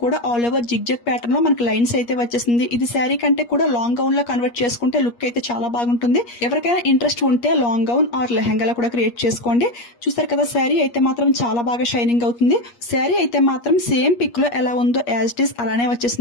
కూడా ఆల్ ఓవర్ జిగ్జాగ్ ప్యాటర్న్ లో మనకి లైన్స్ అయితే వచ్చేసింది. ఇది శారీ కంటే కూడా లాంగ్ గౌన్ లో కన్వర్ట్ చేసుకుంటే లుక్ అయితే చాలా బాగుంటుంది. ఎవరికైనా ఇంట్రెస్ట్ ఉంటే లాంగ్ గౌన్ ఆర్ లెహంగా కూడా క్రియేట్ చేసుకోండి. చూసారు కదా, శారీ అయితే మాత్రం చాలా బాగా షైనింగ్ అవుతుంది. శారీ అయితే మాత్రం సేమ్ పిక్ లో ఎలా ఉందో యాజ్ ఇట్ ఈస్ అలానే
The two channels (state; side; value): late; right; 8.4 ms